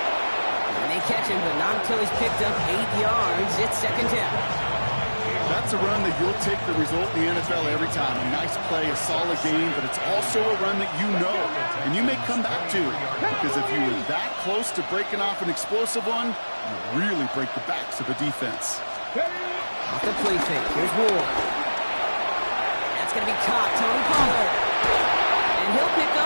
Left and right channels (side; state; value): both; inverted; correlation -1.00